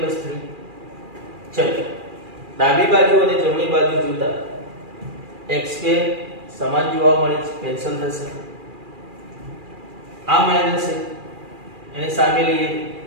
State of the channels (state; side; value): late; left; 2.4 ms